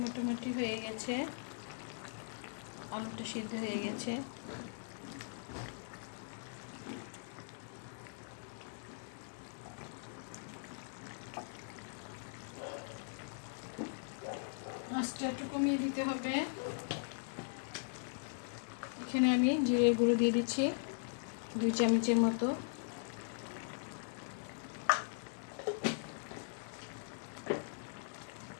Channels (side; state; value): right; silent; digital silence